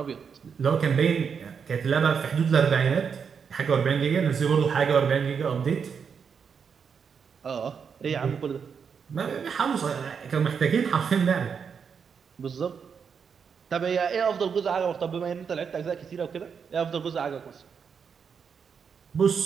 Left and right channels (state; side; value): quieter; left; 6.5 dB